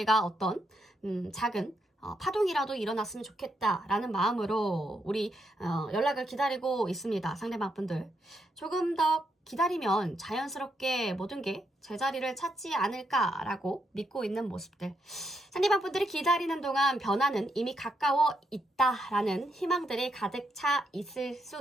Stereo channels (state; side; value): normal; both; correlation 0.79